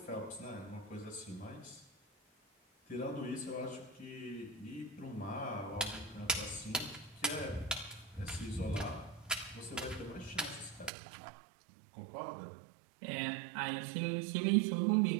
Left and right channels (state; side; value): drops out; left; at 10.9 s